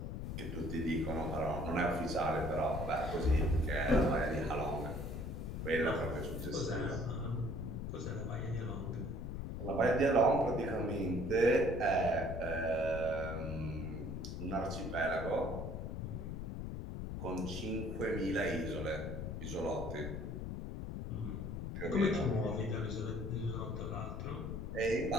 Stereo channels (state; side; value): noise; left; rumble, 5 dB below the sound